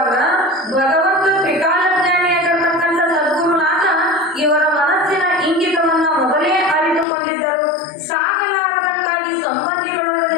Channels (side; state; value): right; drops out; at 7.1 s